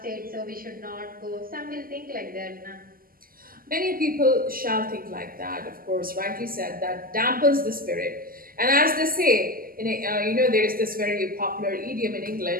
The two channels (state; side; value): late; left; 0.42 ms